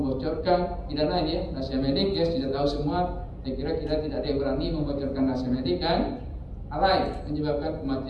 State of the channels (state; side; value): identical; both; correlation 1.00